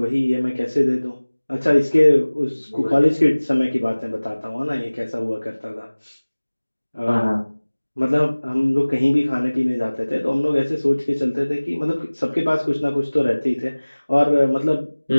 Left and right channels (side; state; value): both; inverted; correlation -1.00